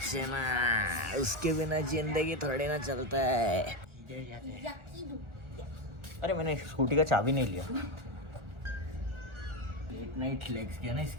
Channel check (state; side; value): late; left; 1.4 ms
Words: उसके बिना जिंदगी थोड़ी ना चलता है। अरे मैंने स्कूटी का चाबी नहीं लिया। लेट नाइट लेग्स किया ना,